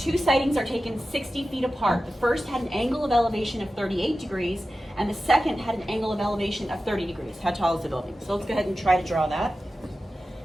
sightings are taken 60 feet apart. The first had an angle of elevation of 38 degrees, and the second had an angle of elevation of 30 degrees. How tall is the building? So let's go ahead and try to draw that.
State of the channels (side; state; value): both; normal; correlation 0.94